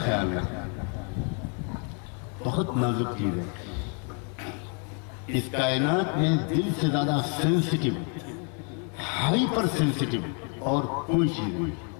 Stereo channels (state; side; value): quieter; right; 39.0 dB